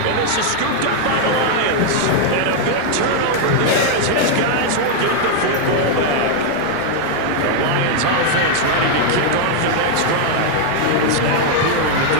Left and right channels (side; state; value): both; different; correlation 0.00